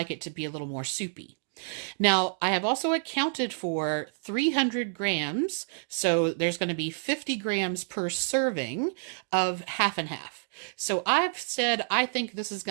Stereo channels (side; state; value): left; silent; digital silence